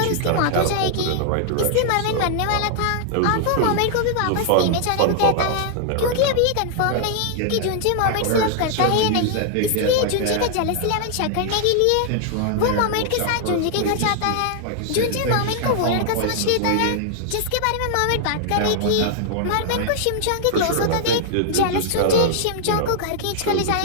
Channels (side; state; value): both; different; correlation 0.00